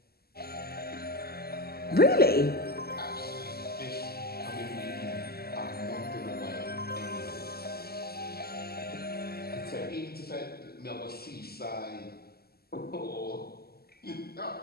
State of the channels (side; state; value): right; late; 0.46 ms